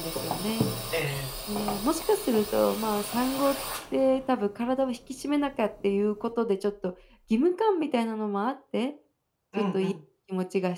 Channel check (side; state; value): both; identical; correlation 1.00